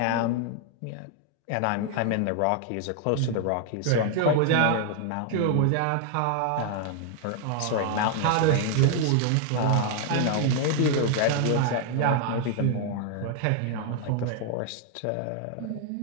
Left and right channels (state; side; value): different; both; correlation 0.00